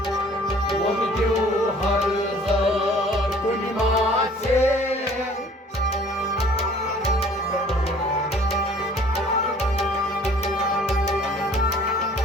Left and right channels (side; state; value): both; normal; correlation 0.53